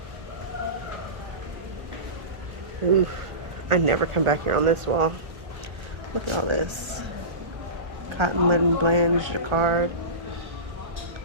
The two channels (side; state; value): left; late; 1.3 ms